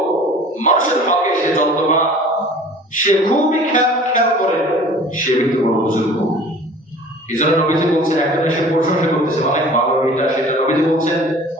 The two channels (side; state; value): both; normal; correlation 0.46